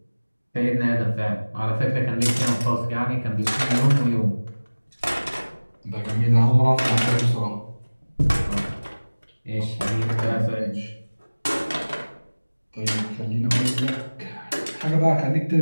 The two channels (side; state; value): both; inverted; correlation -1.00